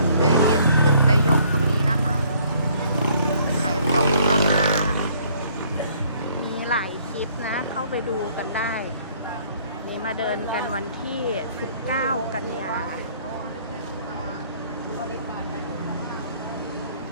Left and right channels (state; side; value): inverted; both; correlation -0.62